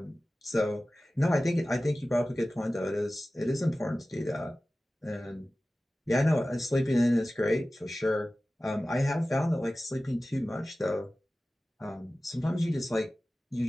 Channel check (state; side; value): normal; both; correlation 0.96